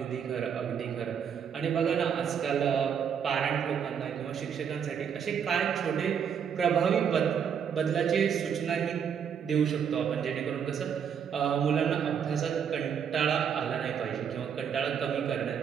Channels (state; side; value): quieter; left; 7.6 dB